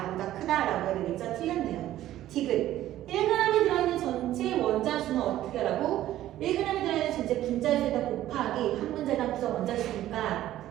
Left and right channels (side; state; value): left; quieter; 13.6 dB